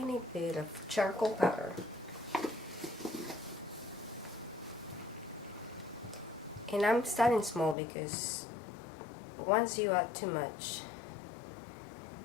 bit of charcoal powder. And I'm starting small because once you add too much,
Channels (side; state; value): right; drops out; at 7.8 s